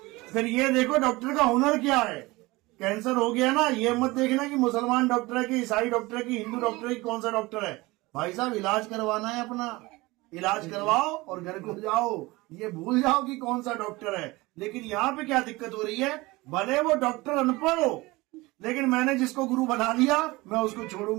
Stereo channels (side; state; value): left; quieter; 21.7 dB